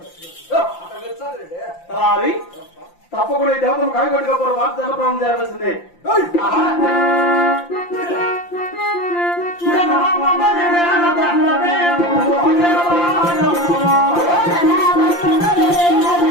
తప్పకుండా ఈ దేవతను కాయగొట్టుకోరు మాట జనప్రాణం చేయాల్సిందే.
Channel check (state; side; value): late; right; 5.8 ms